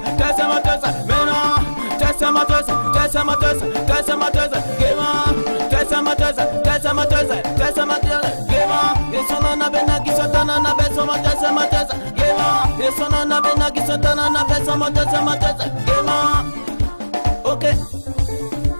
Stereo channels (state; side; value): inverted; both; correlation -1.00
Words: tessa mateuse, maintenant. Tessa mateuse, tessa mateuse, tessa mateuse, gaiement. Tessa mateuse, tessa mateuse, tessa mateuse, gaiement. Et son nom n'a pas qui s'entend na beso mateuse, mateuse, gaiement. Et son nom n'a pas qui s'entend na beso mateuse, mateuse, gaiement. Ok.